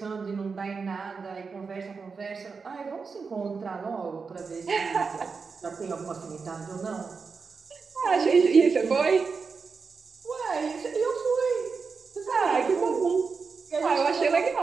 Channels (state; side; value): quieter; left; 5.0 dB